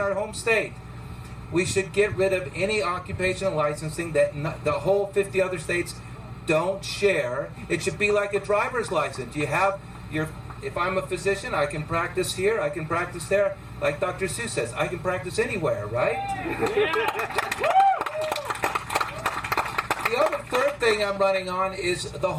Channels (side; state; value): both; identical; correlation 1.00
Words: home state. We should get rid of any occupational licensing that the whole 50 other states don't share. It should be like a driver's license. You have if I'm a physician, I can practice here, I can practice there. Like Dr. Seuss says, I can practice anywhere, right? The other third thing I'm running on is the